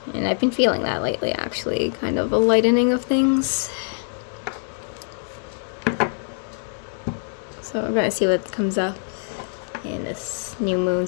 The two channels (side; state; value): right; silent; digital silence